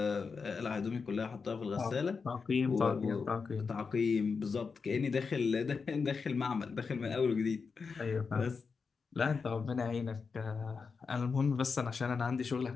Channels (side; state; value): right; quieter; 5.1 dB